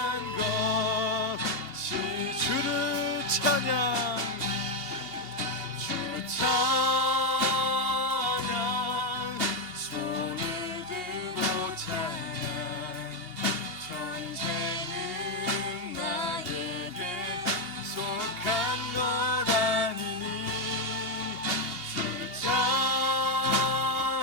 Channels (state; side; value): late; left; 2.7 ms